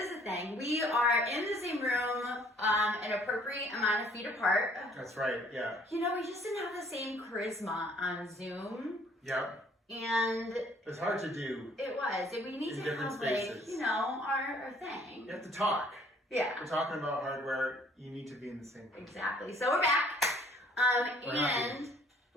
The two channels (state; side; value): normal; both; correlation 0.59